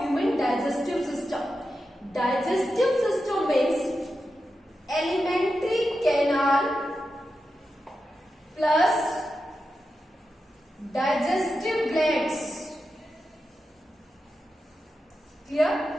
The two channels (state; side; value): normal; both; correlation 0.90